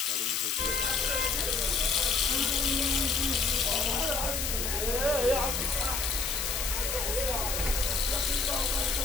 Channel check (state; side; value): noise; left; hiss, 1 dB below the sound